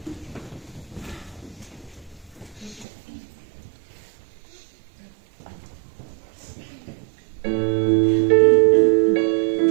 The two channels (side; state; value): left; drops out; at 2.9 s